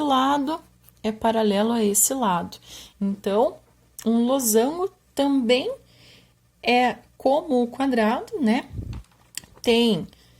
é paralelo a esse lado. Então, um losango também é como o quadrado, né? Tem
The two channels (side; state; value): both; identical; correlation 1.00